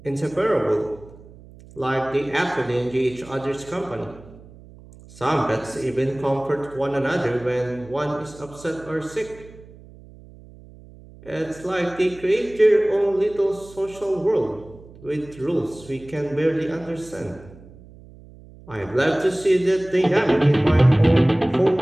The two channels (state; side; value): noise; right; hum, 21 dB below the sound